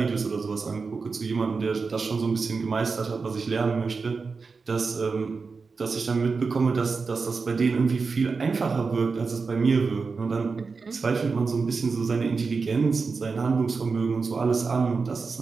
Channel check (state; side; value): quieter; left; 4.6 dB